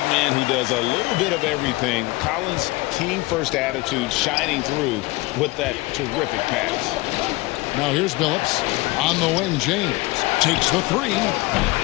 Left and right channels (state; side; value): quieter; right; 21.8 dB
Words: man who does a little bit of everything. Collins' team-first attitude shining through with that terrific pass. Now here's Billups. On the wing, James takes the 3.